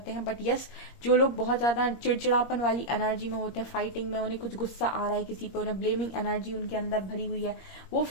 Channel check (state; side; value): late; right; 21 ms